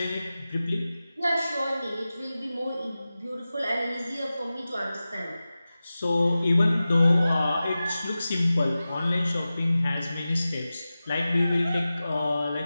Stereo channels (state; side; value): inverted; both; correlation -0.95